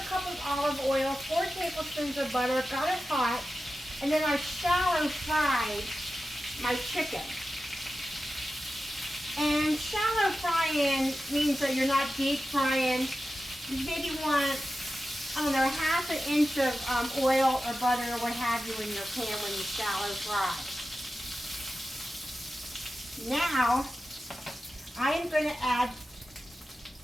cup of olive oil, 4 tablespoons of butter, got it hot, and then I shallow fried my chicken. And shallow frying means that you're not deep frying. You maybe want, I don't know, 1/2 inch of oil or butter or what have you in your pan when you shallow fry. Now, I am going to add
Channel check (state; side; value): normal; both; correlation 0.93